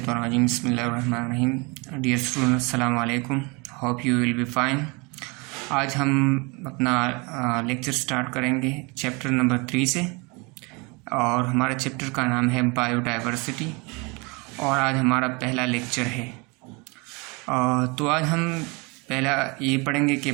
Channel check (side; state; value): left; quieter; 28.6 dB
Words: Bismillahir-rahmanir-rahim. Dear students, assalamu alaikum. Hope you will be fine. आज हम अपना lecture start करेंगे chapter number 3 से, और हमारा चैप्टर का नाम है बायोडाइवर्सिटी, और आज हमारा पहला लेक्चर है। तो आज हम पहला ये पढ़ेंगे कि